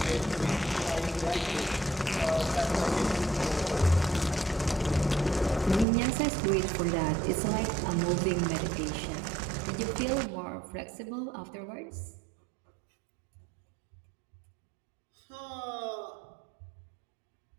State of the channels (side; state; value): left; drops out; at 5.9 s